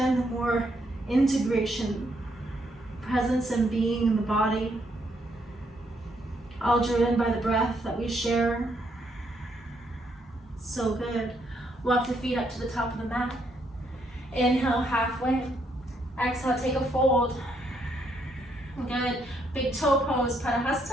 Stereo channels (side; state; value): both; normal; correlation 0.74